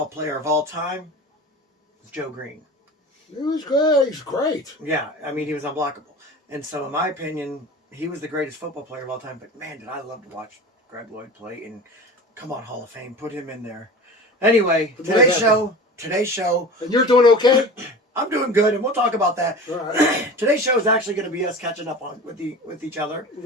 player of all time is Joe Green. He was good. He's great. Yeah, I mean, he was unblockable. And so, in my opinion, he was the greatest football player of all time. But, man, did I love to watch Greg Lloyd play. And, come on, Hall of Fame, put him in there. Anyway, today's show. And you're doing okay? I'm doing good, and we'll talk about that. All right. Today's show is actually going to be us catching up with each other.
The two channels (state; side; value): normal; both; correlation 0.35